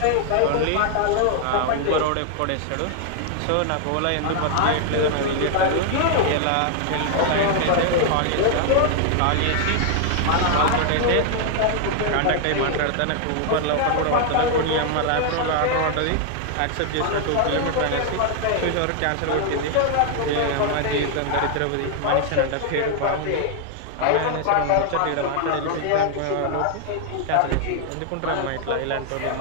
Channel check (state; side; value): different; both; correlation 0.00